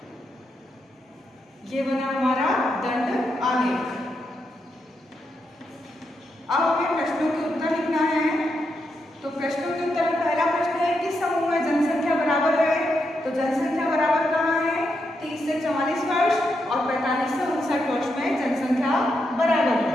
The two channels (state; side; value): normal; both; correlation 0.83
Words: ये बना हमारा दंड आलेख। अब हमें प्रश्नों के उत्तर लिखना है। तो प्रश्नों के उत्तर में पहला प्रश्न है, किस समूह में जनसंख्या बराबर है? तो जनसंख्या बराबर कहाँ है? 30 से 44 वर्ष और 45 से 59 वर्ष में जनसंख्या बराबर है।